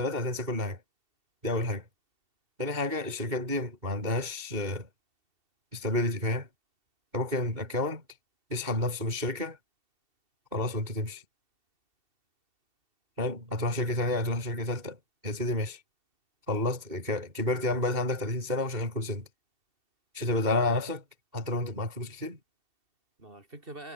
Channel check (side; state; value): left; late; 2.7 ms